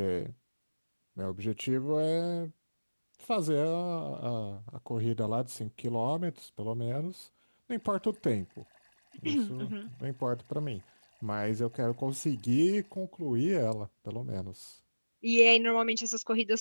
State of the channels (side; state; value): both; inverted; correlation -1.00